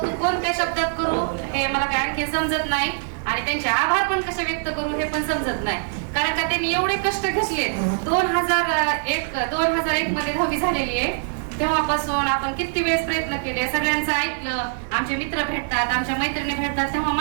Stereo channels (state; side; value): silent; left; digital silence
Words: कोणत्या शब्दात करू हे मला काय आणखी समजत नाही आणि त्यांचे आभार पण कसे व्यक्त करू हे पण समजत नाही. कारण का त्यांनी एवढे कष्ट घेतले. 2001 मध्ये 10वी झालेली आहे. तेव्हापासून आपण किती वेळेस प्रयत्न केले, सगळ्यांचं ऐकलं. आमचे मित्र भेटतात, आमच्या मैत्रिणी भेटतात, तेव्हा